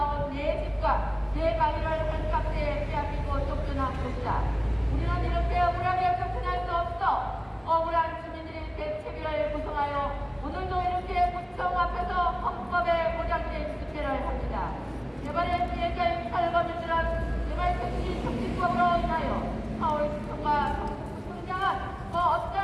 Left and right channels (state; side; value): identical; both; correlation 1.00